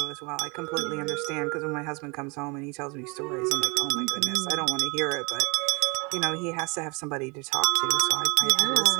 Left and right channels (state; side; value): quieter; left; 30.2 dB